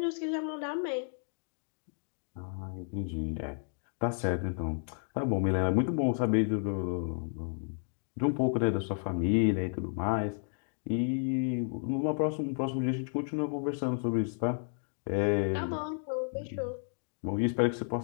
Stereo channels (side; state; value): right; silent; 56 dB below the other